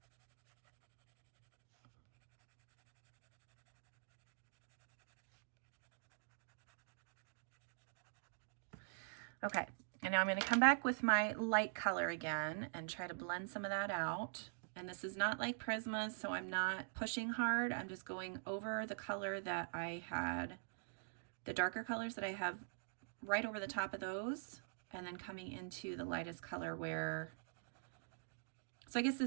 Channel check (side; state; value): left; silent; digital silence